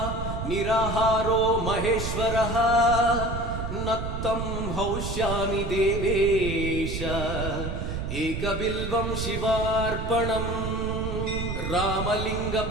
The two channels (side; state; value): right; noise; rumble, 4 dB below the sound